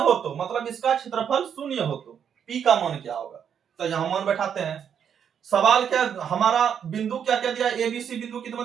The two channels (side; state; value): left; quieter; 8.1 dB